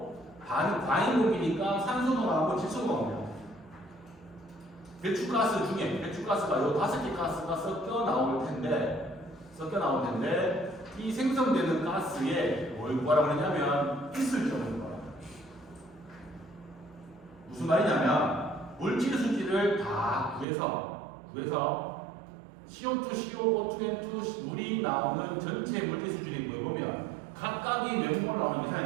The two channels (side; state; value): left; drops out; at 20.5 s